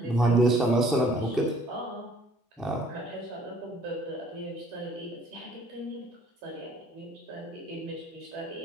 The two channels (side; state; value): both; normal; correlation 0.58